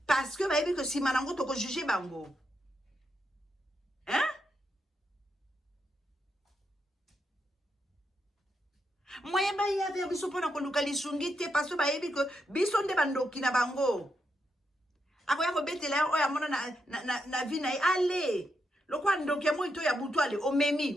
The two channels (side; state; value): both; normal; correlation 0.82